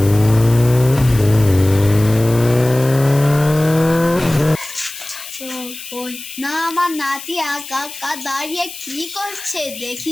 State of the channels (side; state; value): left; noise; hiss, 13 dB below the sound